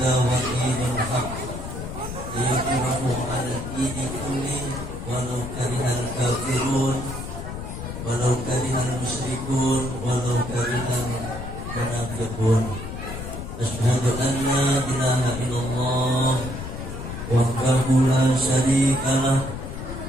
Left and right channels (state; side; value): noise; left; rumble, 8 dB below the sound